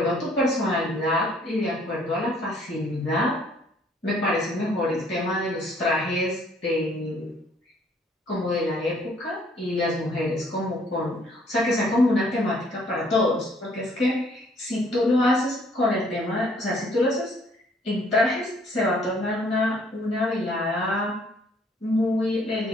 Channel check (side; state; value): both; normal; correlation 0.62